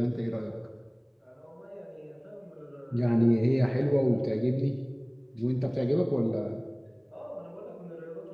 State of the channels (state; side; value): identical; both; correlation 1.00